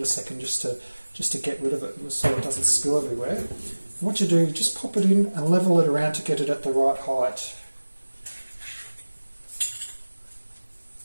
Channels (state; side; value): inverted; both; correlation -1.00